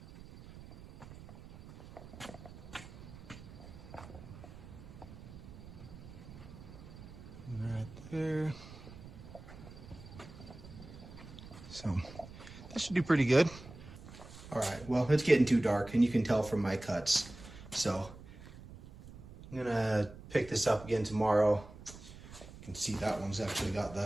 Right there. So this should do pretty good. All right, well, it's getting too dark and you can tell from my cuts. So I'm gonna pick this up again tomorrow. You can see that one's actually got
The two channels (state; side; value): noise; right; rumble, 16 dB below the sound